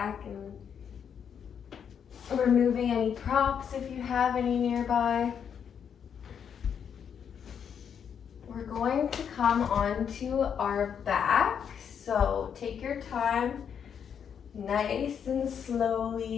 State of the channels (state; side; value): quieter; right; 7.8 dB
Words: and removing any props if you have any nearby. We're going to come onto our back, so take your time, nice and